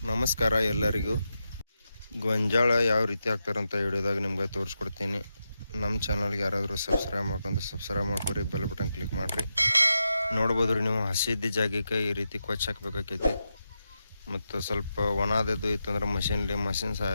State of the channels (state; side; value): inverted; both; correlation -0.88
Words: ನಮಸ್ಕಾರ ಎಲ್ಲರಿಗೂ. ಗೊಂಜಾಳ ಯಾವ ರೀತಿ ಹಾಕ್ತಾರಂತ ವಿಡಿಯೋದಾಗ ನಿಮ್ಗೆ ತೋರಿಸ್ಕೊಡ್ತೀನಿ. ನಮ್ಮ ಚಾನಲ್ಗೆ ಯಾರಾದರೂ ಸಬ್ಸ್ಕ್ರೈಬ್ ಮಾಡ್ಕೊರಿ, ಬೆಲ್ ಬಟನ್ ಕ್ಲಿಕ್ ಮಾಡಿರಿ. ನೋಡ್ಬೋದು ರೀ ನೀವು, ಹಸಿದ್ದ ಜಾಗಕ್ಕೆ ಈ ರೀತಿ ಕೊಚ್ಚಿ ಹಾಕ್ಬೇಕಾಕೈತಿ. ಮತ್ತು ಸ್ವಲ್ಪ ಒಣದದ್ದು ಇತ್ತಂದ್ರೆ ಮಷಿನ್